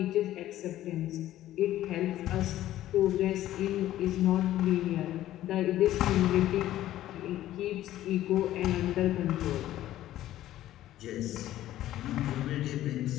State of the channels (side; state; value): right; quieter; 13.7 dB